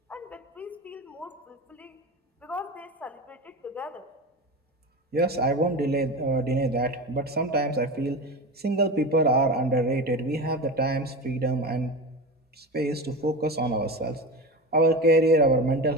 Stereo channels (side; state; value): both; normal; correlation 0.25